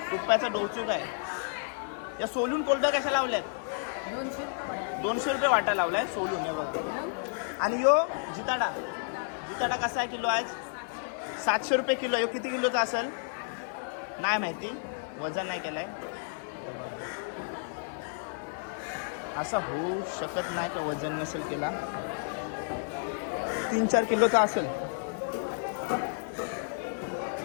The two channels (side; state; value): right; silent; digital silence